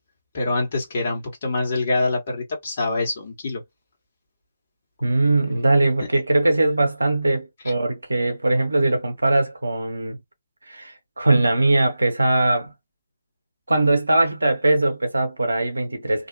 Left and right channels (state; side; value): inverted; both; correlation -0.92